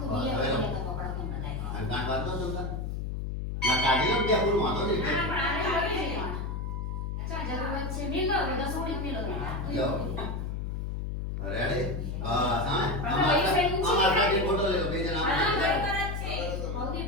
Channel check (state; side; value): noise; left; hum, 3 dB below the sound